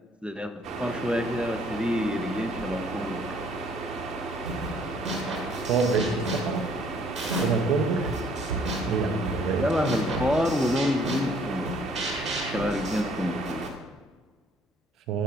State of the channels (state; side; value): normal; both; correlation 0.61